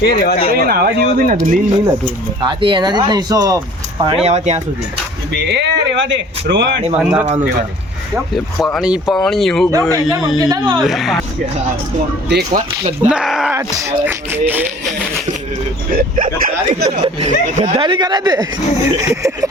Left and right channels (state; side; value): normal; both; correlation 0.49